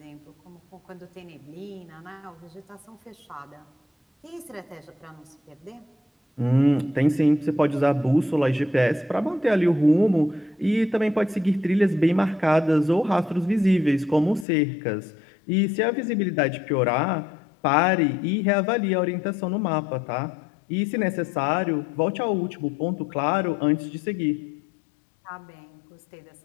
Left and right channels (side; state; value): right; drops out; at 14.5 s